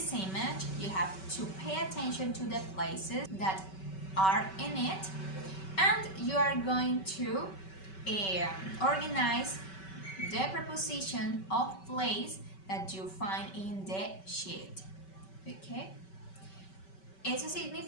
image, you have to pay attention to the places that are in it, and you are going to organize the preposition of place that you find in the sheet. Okay? Eso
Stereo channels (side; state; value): right; late; 5.2 ms